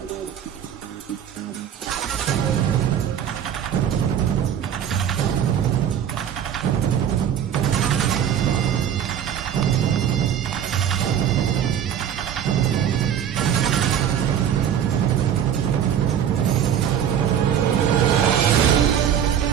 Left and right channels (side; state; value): left; quieter; 9.3 dB